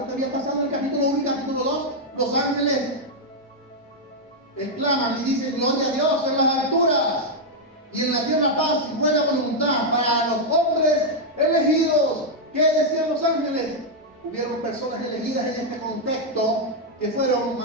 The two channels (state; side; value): normal; both; correlation -0.01